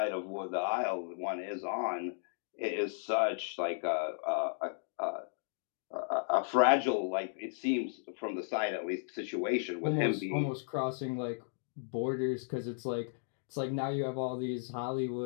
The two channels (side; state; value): right; silent; digital silence